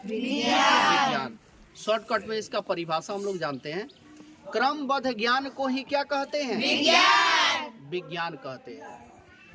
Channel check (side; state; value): both; identical; correlation 1.00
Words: विज्ञान। शॉर्टकट में इसका परिभाषा हम लोग जानते हैं, क्रमबद्ध ज्ञान को ही क्या कहते हैं? विज्ञान कहते